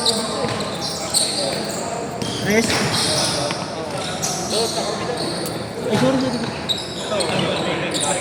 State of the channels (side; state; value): both; identical; correlation 1.00